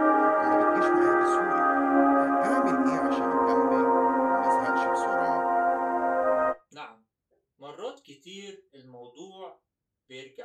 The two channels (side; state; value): both; identical; correlation 1.00